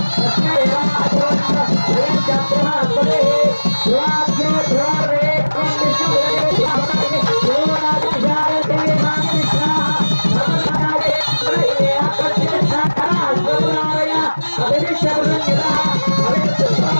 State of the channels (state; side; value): inverted; both; correlation -1.00